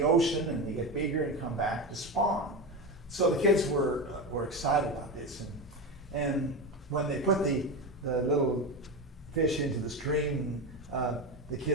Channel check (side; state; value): both; normal; correlation 0.19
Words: ocean, and they get bigger and come back to spawn. So the kids were excited about this, and when they put the little fish into the stream, the